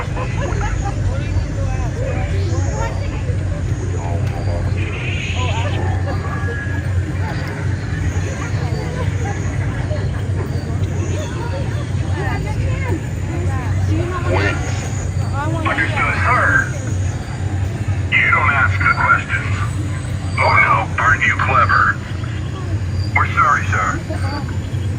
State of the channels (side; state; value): both; identical; correlation 1.00